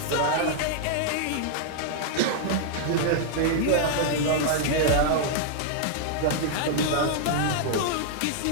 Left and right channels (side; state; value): both; different; correlation -0.01